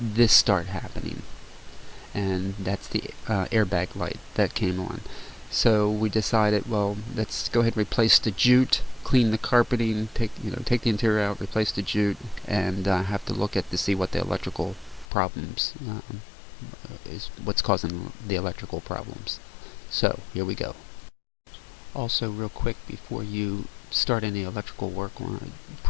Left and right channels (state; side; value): drops out; right; at 15.1 s